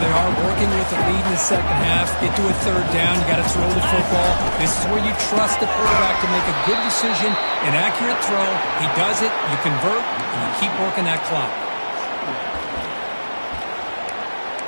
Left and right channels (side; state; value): both; inverted; correlation -1.00